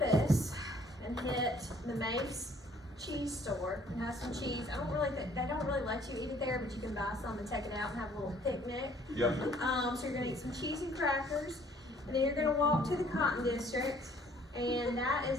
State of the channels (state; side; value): normal; both; correlation 0.59